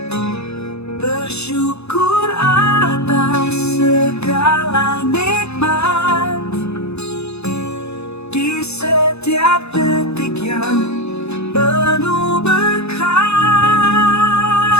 bersyukur atas segala nikmat di setiap detik yang penuh berkah.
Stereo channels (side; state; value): right; late; 0.80 ms